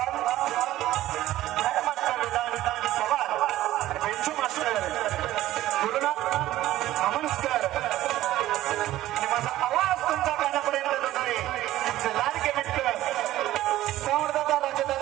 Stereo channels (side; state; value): left; quieter; 14.9 dB